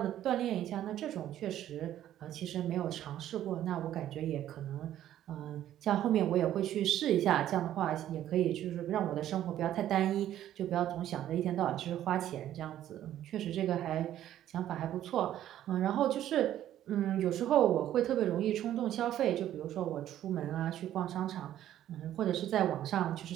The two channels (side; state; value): left; quieter; 12.0 dB